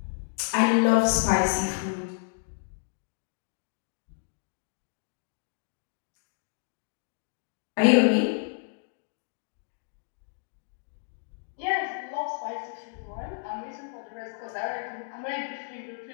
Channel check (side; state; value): right; silent; digital silence